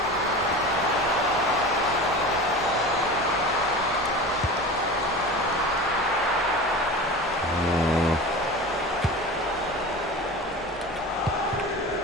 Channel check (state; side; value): normal; both; correlation 0.33